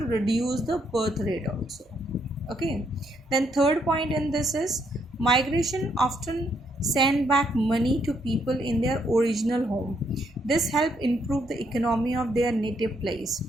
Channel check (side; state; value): both; normal; correlation 0.74